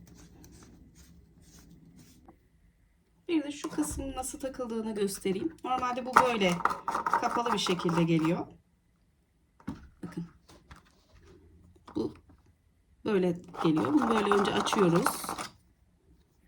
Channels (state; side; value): identical; both; correlation 1.00